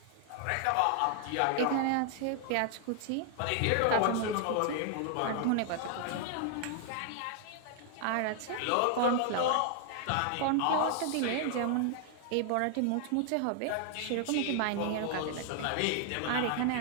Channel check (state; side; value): different; both; correlation 0.00